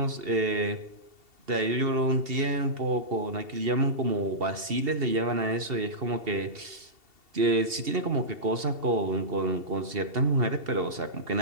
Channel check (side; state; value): left; late; 2.7 ms